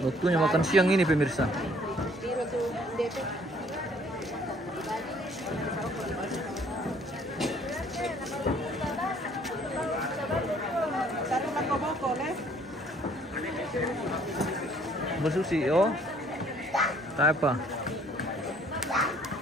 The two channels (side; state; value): both; normal; correlation 0.60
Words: Waktunya makan siang ini pemirsa. Bersusi oh. Tak apa.